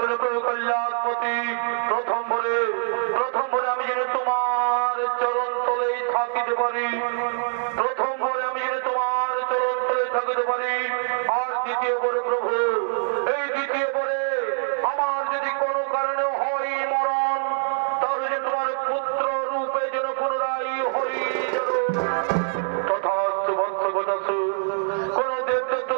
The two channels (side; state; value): left; silent; digital silence